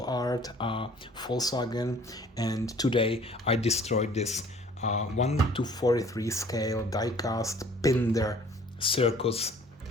Art Volkswagen, and today I destroyed this 1:43 scale die-cast Pinder Circus,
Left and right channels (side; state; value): both; normal; correlation 0.53